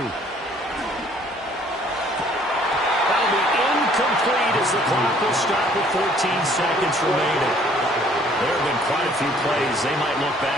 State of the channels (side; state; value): both; normal; correlation 0.59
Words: That'll be incomplete as the clock will stop with 14 seconds remaining. There have been quite a few plays they might look